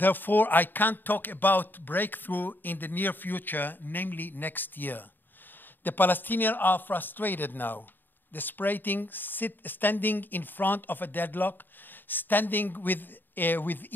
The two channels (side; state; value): right; late; 0.092 ms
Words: I can't talk about breakthrough in the near future, namely next year. The Palestinians are frustrated now, desperating, standing in front of a deadlock, standing